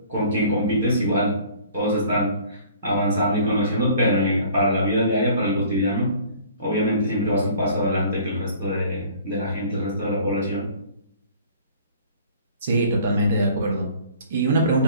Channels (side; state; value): both; inverted; correlation -0.51